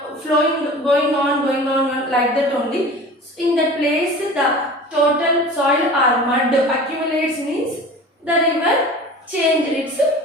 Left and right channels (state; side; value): normal; both; correlation 0.39